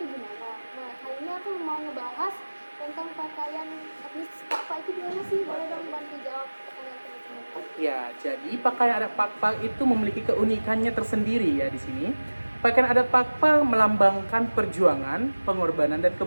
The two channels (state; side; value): inverted; both; correlation -1.00